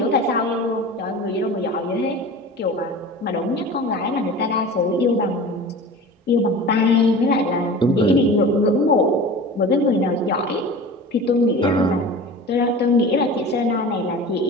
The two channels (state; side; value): normal; both; correlation 0.36